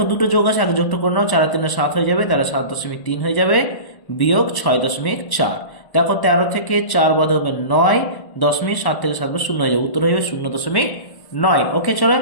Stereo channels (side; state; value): right; late; 1.1 ms